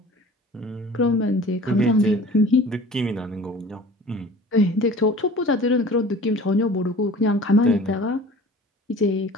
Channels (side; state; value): both; normal; correlation 0.44